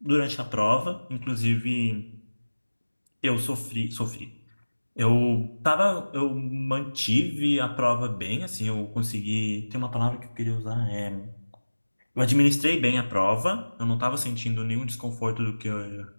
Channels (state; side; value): inverted; both; correlation -1.00